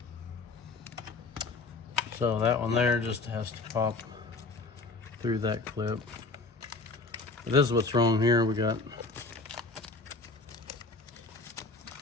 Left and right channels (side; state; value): right; quieter; 3.6 dB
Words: So that one there just has to pop through that clip. But this is what's wrong here. We got